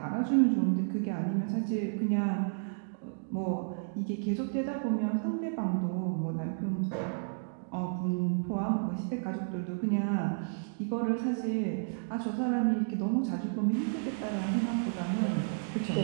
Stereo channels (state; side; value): silent; left; digital silence